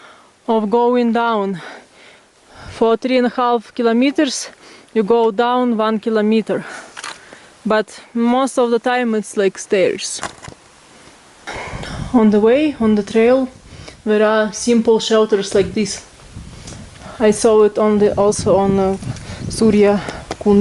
of going down. For 3.5 kilometers you go down 1 kilometer, but most of the time it's like stairs. On the way, on the trail, there are simple shelters like this. I saw it also on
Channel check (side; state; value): both; identical; correlation 1.00